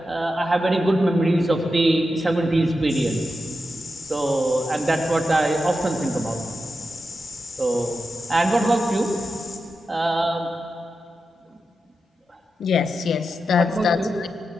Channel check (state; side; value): normal; both; correlation 0.89